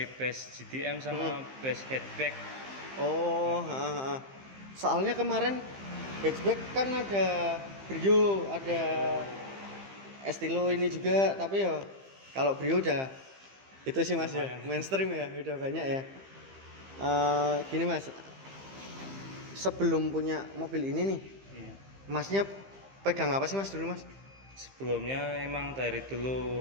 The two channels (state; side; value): late; left; 15 ms